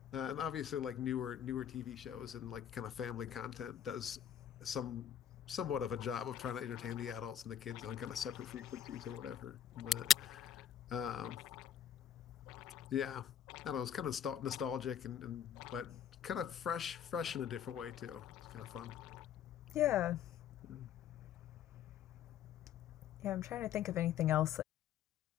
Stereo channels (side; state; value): right; quieter; 9.4 dB